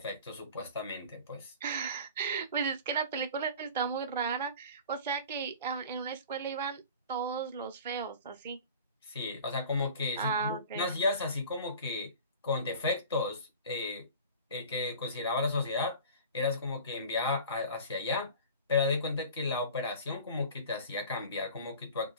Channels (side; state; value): both; inverted; correlation -0.39